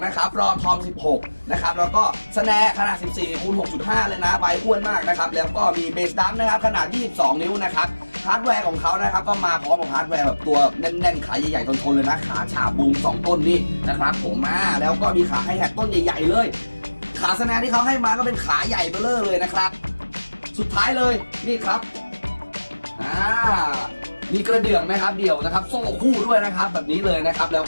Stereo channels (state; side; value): inverted; both; correlation -1.00